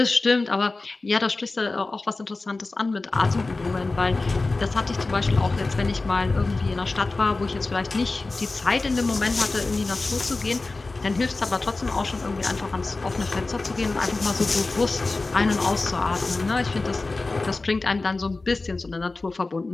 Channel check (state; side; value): quieter; right; 3.4 dB